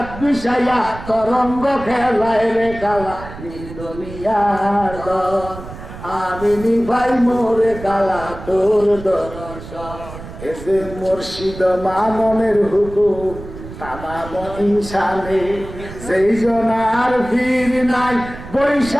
বিষাইয়া তরঙ্গ খেলায় রে কালা দুনিয়ার আমি ভাই মোরে কালা তোর দর্শন এসে মুর্শিদ মাননের হুকুম তামাম ইনসানে সেই জনার ভিড় নাই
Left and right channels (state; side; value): noise; right; rumble, 13 dB below the sound